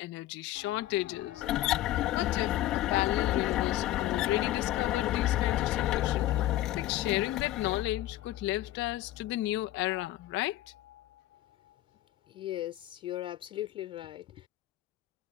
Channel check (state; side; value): quieter; right; 14.9 dB